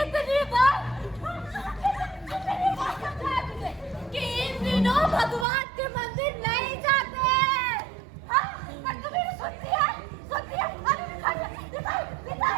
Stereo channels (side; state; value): left; drops out; at 5.5 s